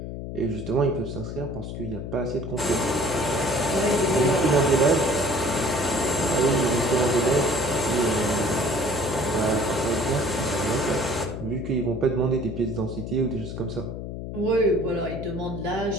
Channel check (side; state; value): left; noise; hum, 7 dB below the sound